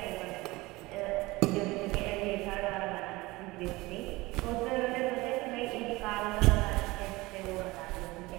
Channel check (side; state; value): left; quieter; 21.2 dB